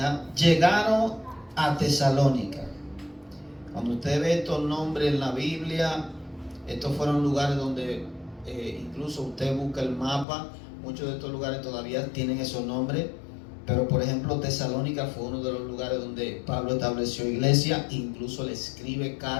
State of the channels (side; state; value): right; drops out; at 10.2 s